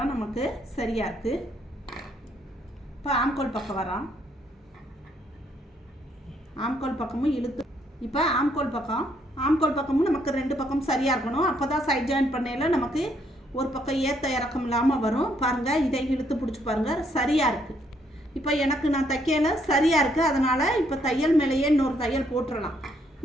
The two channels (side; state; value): both; normal; correlation 0.71